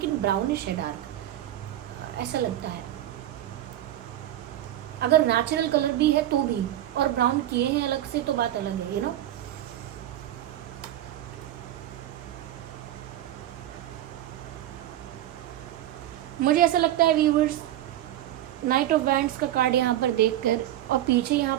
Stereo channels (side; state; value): left; quieter; 12.9 dB